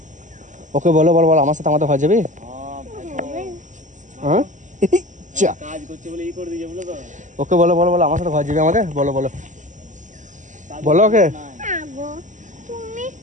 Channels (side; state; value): left; late; 0.36 ms